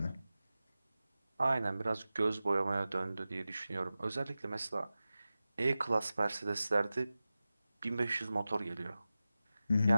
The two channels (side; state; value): both; inverted; correlation -0.95